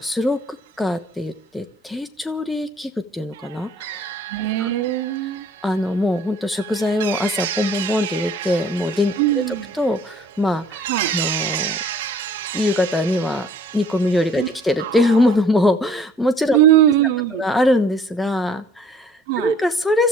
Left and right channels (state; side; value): normal; both; correlation 0.55